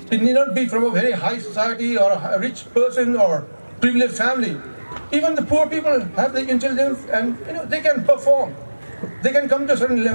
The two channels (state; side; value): inverted; both; correlation -1.00